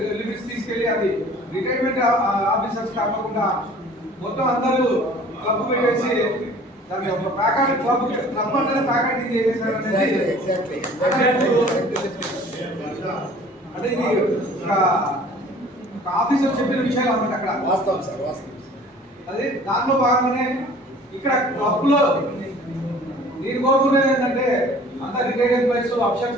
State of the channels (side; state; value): both; normal; correlation 0.49